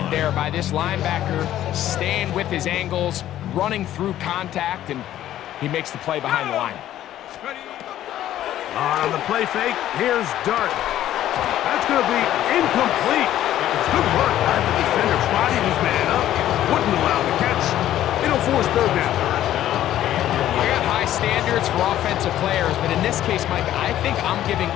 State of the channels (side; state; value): right; quieter; 12.6 dB